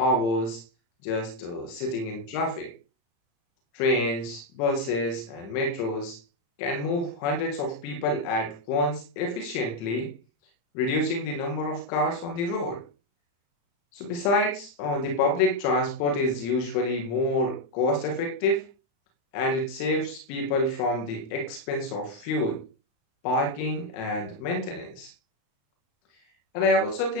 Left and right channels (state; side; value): late; right; 35 ms